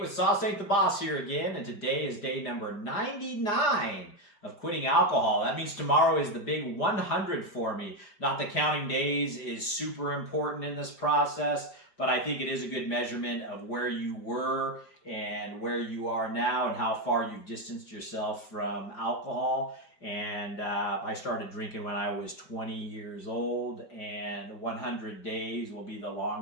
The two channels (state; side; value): late; right; 5.0 ms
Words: Sauce Ain't the Boss here again, and today is day number 99 of quitting alcohol. That means tomorrow is the big 100 for me. Not that counting days is super important in this process, but I think it is a good measurement of where you were and where you are now and how far you've distanced yourself from alcohol. And I started drinking when I was 20 years old, and 100 days will be the